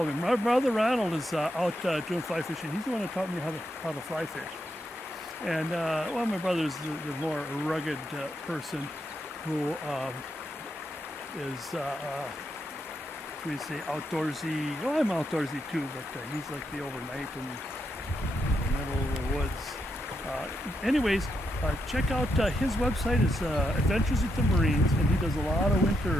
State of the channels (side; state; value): both; normal; correlation 0.82